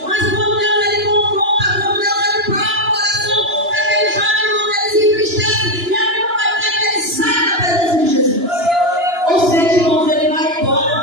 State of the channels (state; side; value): late; left; 2.9 ms